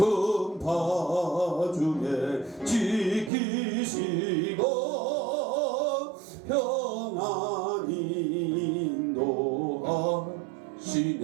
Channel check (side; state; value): left; drops out; at 3.3 s